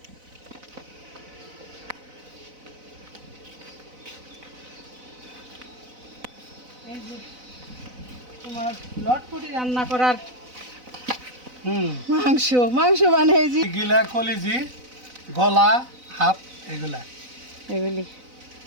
এই যে তোমার লটপটি রান্না করার মাংস মাংস মানে এই যে গিলা কলিজি, গলা, হাত, এগুলা। এগুলি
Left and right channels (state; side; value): late; left; 4.0 ms